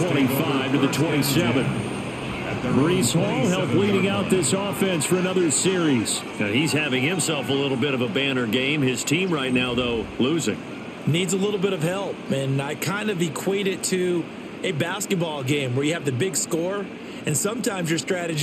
to the 27. Breece Hall helped leading out this offense for another series. Now he's having himself a little bit of a banner game. His team right now, though, losing. Needs a little bit of help, and I kind of equate it to a basketball game where you have the big score, and sometimes your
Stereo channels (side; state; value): both; identical; correlation 1.00